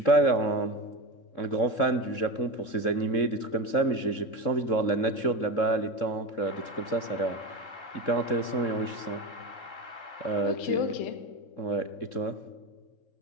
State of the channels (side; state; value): right; late; 3.7 ms